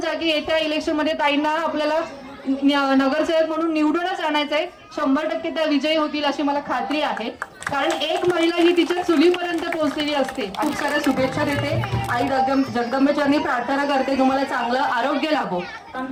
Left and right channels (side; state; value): both; identical; correlation 1.00